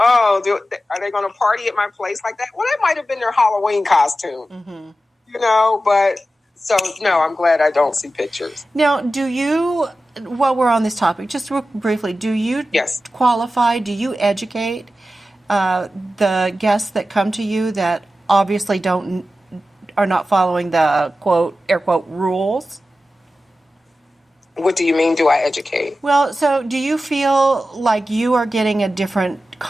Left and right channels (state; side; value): normal; both; correlation 0.93